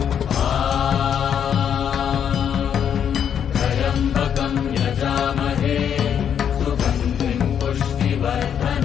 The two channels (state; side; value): quieter; right; 8.5 dB